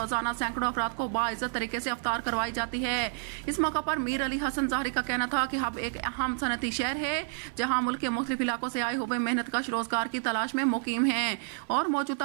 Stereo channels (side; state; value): left; silent; 58 dB below the other